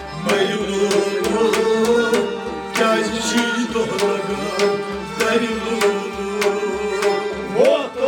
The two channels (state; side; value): identical; both; correlation 1.00